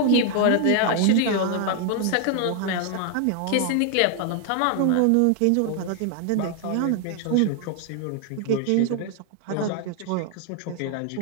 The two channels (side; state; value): both; different; correlation 0.00